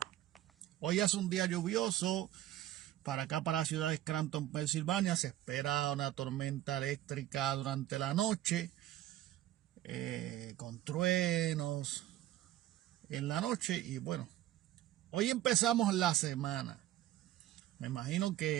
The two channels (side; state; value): left; quieter; 13.8 dB